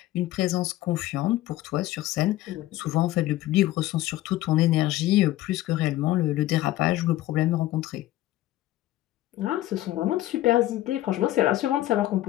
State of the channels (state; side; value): quieter; right; 15.3 dB